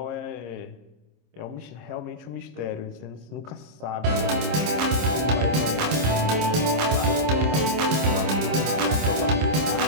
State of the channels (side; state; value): left; late; 26 ms